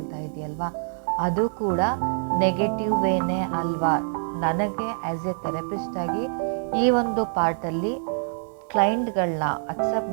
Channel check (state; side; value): silent; left; digital silence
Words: ಇದೆಯಲ್ವಾ, ಅದು ಕೂಡ ನೆಗೆಟಿವ್ ವೇನೇ ಅಲ್ವಾ? ನನಗೆ ಆ್ಯಸ್ ಎ ಥೆರಪಿಸ್ಟ್ ಆಗಿ ಈ ಒಂದು ಪಾರ್ಟಲ್ಲಿ ಕ್ಲೈಂಟ್ಗಳನ್ನ ಅಕ್ಸೆಪ್ಟ್